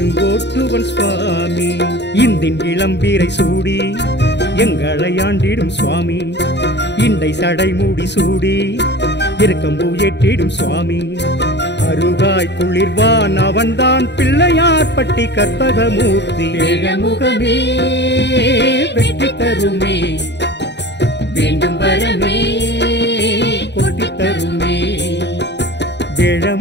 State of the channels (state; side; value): late; right; 0.50 ms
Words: சுவாமி. இந்தின் இளம்பீரை சூடி எங்களை ஆண்டிடும் சுவாமி. இண்டை சடை மூடி சூடி இருக்கம்பூ ஏற்றிடும் சுவாமி. அருகாய் குளிர்வான் அவன்தான் பிள்ளையார் பட்டி கற்பகமூர்த்தி. வேழமுகமே வெற்றி தருமே, வேண்டும் வரமே கொட்டி தருமே.